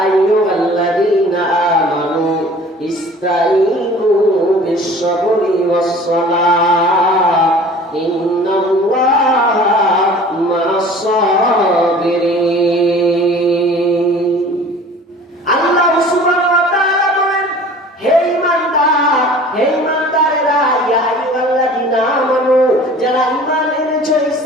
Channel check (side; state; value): both; normal; correlation 0.46